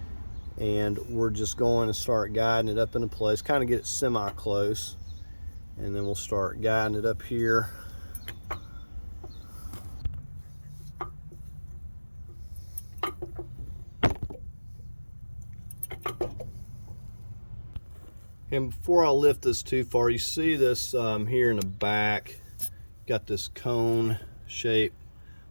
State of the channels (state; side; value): inverted; both; correlation -1.00